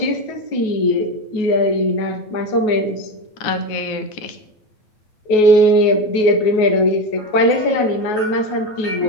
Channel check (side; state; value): right; late; 9.4 ms